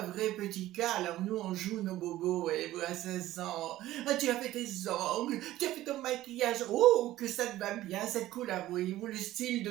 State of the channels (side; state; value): left; quieter; 15.1 dB